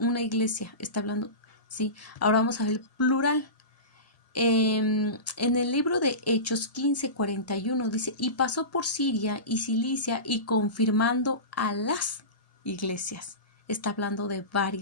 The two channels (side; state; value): right; late; 1.7 ms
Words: iglesia, está hablando, ¿sí? Ahora vamos a ver el plural. En el libro de Hechos 15:41 dice, y pasó por Siria y Cilicia y confirmando a las iglesias. Está hablando de